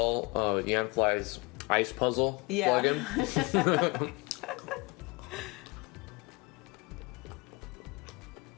Yanfly's Ice Puzzle Yeah. plugin?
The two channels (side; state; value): right; quieter; 26.4 dB